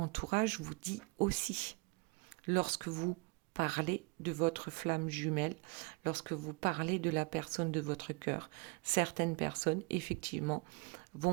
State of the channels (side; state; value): left; quieter; 28.9 dB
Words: vous dit aussi. Lorsque vous parlez de votre flamme jumelle, lorsque vous parlez de la personne de votre cœur, certaines personnes, effectivement,